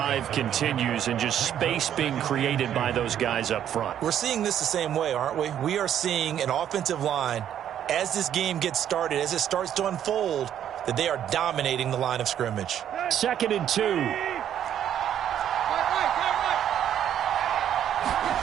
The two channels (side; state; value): left; quieter; 10.1 dB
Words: continues and just space being created by those guys up front. We're seeing this the same way, aren't we? We are seeing an offensive line, as this game gets started, as it starts to unfold, that they are dominating the line of scrimmage. 2nd and 2.